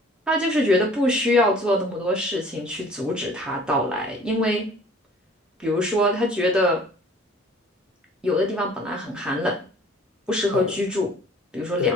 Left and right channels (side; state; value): both; normal; correlation 0.51